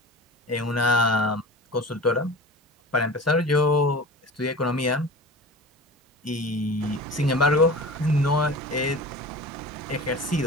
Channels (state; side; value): normal; both; correlation 0.35